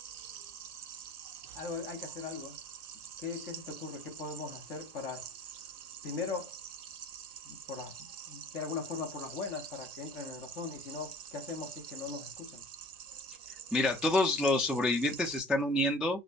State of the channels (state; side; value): normal; both; correlation 0.49